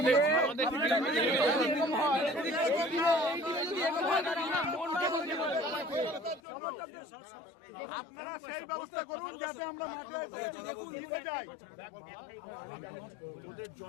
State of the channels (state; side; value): drops out; right; at 6.4 s